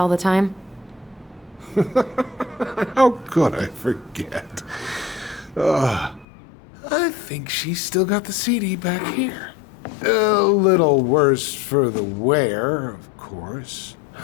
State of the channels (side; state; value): right; drops out; at 6.2 s